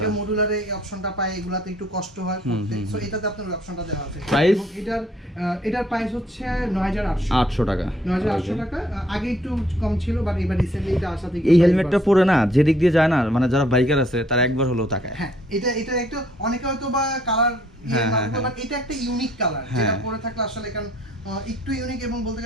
মডুলারে এই অপশনটা পায়, এগুলাতে একটু কষ্ট হয় পড়তে, সো এটাতে আপনার অপশনটা দেওয়া আছে। এবং এটার প্রাইস হচ্ছে 9800 টাকা। 9800 টাকা। আগে একটু কম ছিল, বাট এবার রিসেন্টলি এটা আসা থেকে এই হেলমেটটা পরে না যেদিক দিয়ে যায় না, মানে যারা বাইকার আছে তারা একবার হলেও তাকায়। হ্যাঁ, এটা একটা অনেকে হয়তো বা কালার বাট এটা একটা ইউনিক কালার, যেটা পরে থাকলে আসলে কারণ একটু ইউনিক, এবং বলতে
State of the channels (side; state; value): both; normal; correlation 0.64